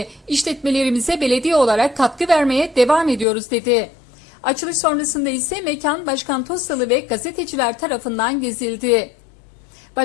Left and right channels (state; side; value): drops out; right; at 3.2 s